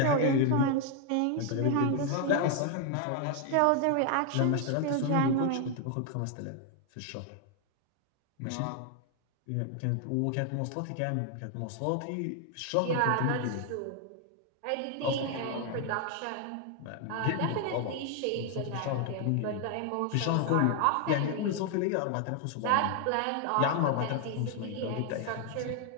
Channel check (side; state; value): both; different; correlation 0.00